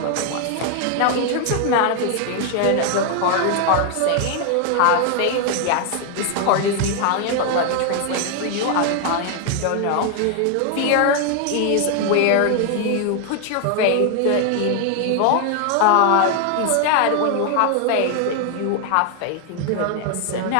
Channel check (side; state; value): both; different; correlation 0.00